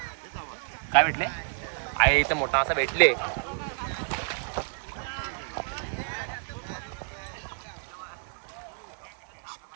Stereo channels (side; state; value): left; silent; 58 dB below the other